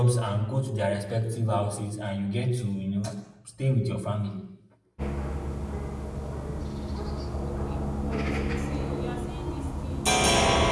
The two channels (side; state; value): both; identical; correlation 1.00